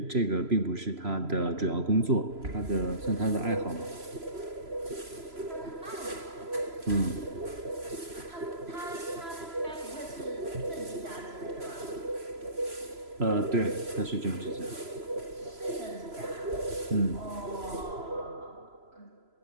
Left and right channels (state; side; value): late; left; 3.0 ms